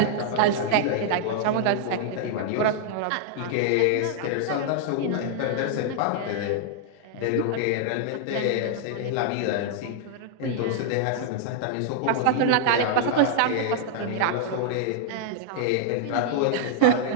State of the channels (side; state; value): both; different; correlation -0.01